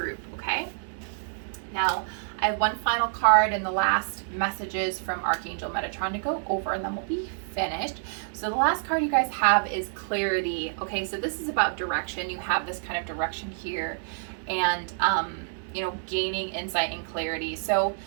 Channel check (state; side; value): silent; left; 60 dB below the other